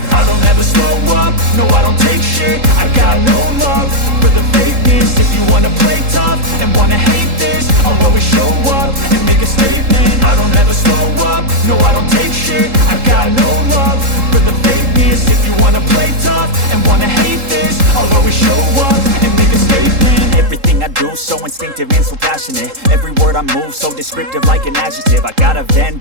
I don't ever slow up, no I don't take shit. I got no love for the fakeness. If you wanna play tough and wanna hate this, I'll always show up and make a statement. I don't ever slow up, no I don't take shit. I got no love for the fakeness. If you wanna play tough and wanna hate this, I'll always show up and make a statement. Everything I do so instinctive and so passionate. Every word I move so descriptive like an adjective. I got a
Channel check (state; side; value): late; left; 3.7 ms